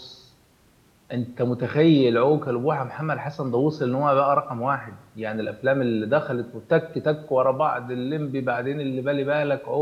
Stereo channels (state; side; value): identical; both; correlation 1.00